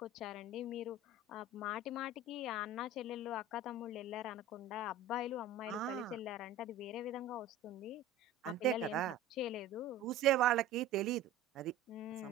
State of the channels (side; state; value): left; quieter; 3.3 dB